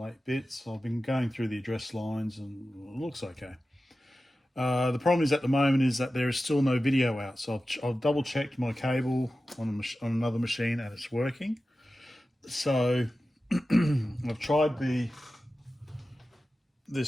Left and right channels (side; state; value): both; normal; correlation 0.94